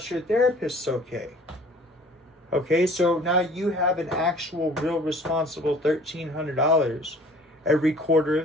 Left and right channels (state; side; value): normal; both; correlation 0.51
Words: your therapist's okay. Okay, so now you have an actual, real responsible $1,300 every quarter